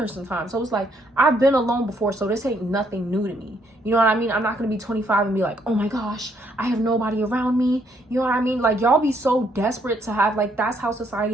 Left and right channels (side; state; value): both; normal; correlation 0.70